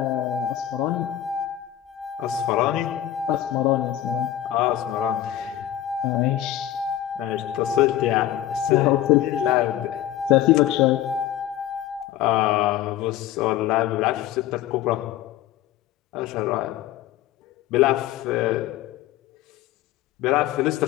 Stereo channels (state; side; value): quieter; right; 12.4 dB